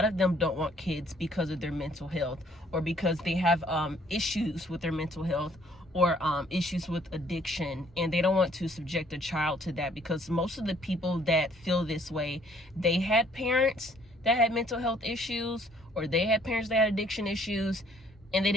of them don't want kids because of their mental health, or because they have issues with their mental health, or issues with addiction, and they don't want to subject a child to that, because most of the people that feel this way, they had parents that had mental health issues, or they had parents that had addiction issues, and they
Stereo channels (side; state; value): both; normal; correlation 0.62